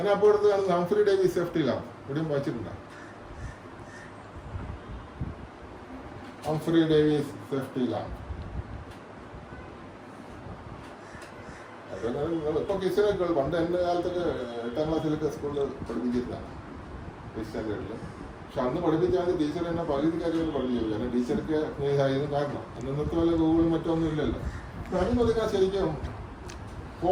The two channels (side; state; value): both; identical; correlation 1.00